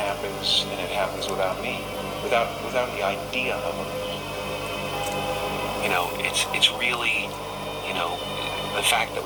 and it happens without me, without the idea of it. You know, it's really, you know, the fact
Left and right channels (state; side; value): identical; both; correlation 1.00